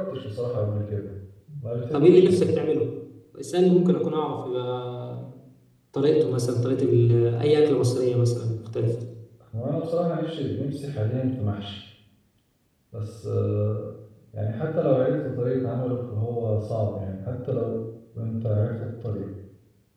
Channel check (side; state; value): both; identical; correlation 1.00